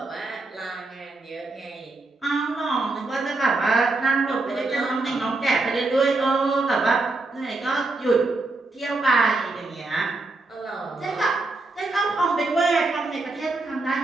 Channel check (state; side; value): quieter; left; 3.3 dB